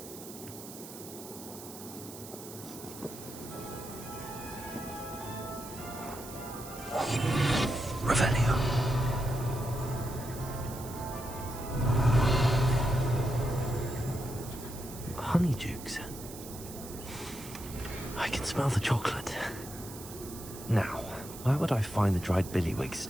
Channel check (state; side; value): noise; right; hiss, 14 dB below the sound